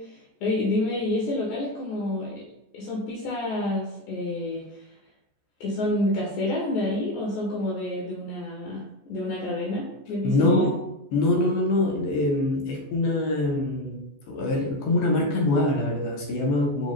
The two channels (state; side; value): late; right; 14 ms